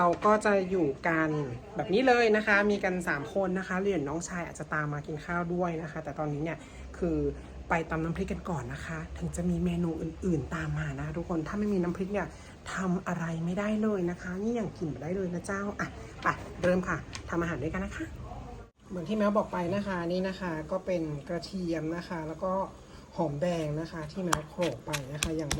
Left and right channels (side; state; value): both; identical; correlation 1.00